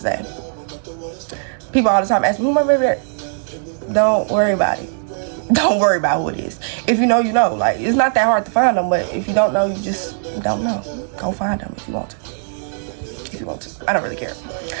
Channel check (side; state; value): left; silent; digital silence